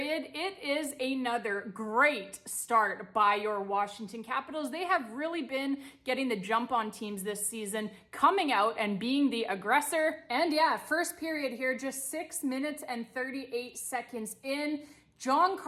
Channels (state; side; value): identical; both; correlation 1.00